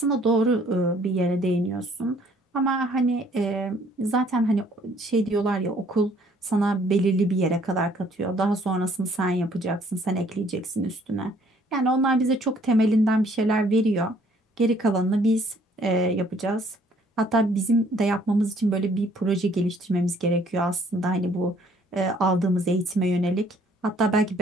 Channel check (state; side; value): normal; both; correlation 0.61